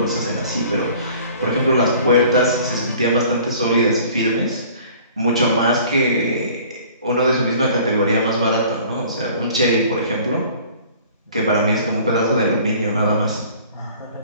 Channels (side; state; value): both; inverted; correlation -0.50